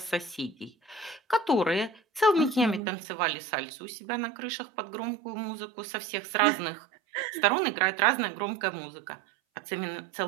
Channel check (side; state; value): left; drops out; at 2.8 s